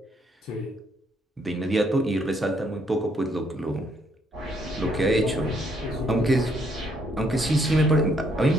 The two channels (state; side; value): normal; both; correlation 0.70